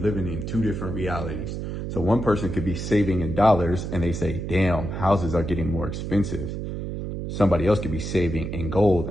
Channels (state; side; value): noise; right; hum, 5 dB below the sound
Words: in two different realities. So one person could be saving in dollars and they say, damn, houses are getting more expensive. Somebody else could be saving in gold